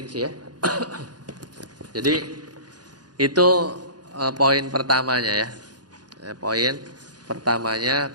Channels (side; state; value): left; late; 0.69 ms